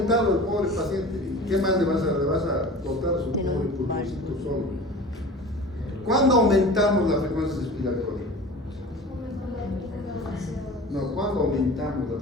el pobre paciente. ¿Qué más le vas a cortar a su pobre pulmoncito solo? ¿Cuándo aumentamos la frecuencia respiratoria? No, ¿cuándo aumentamos la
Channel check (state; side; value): normal; both; correlation 0.38